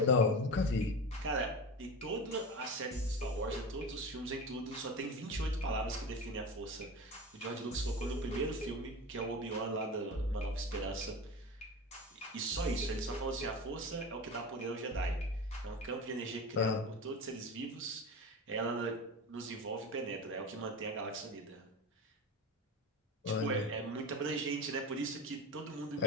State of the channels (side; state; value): both; normal; correlation 0.27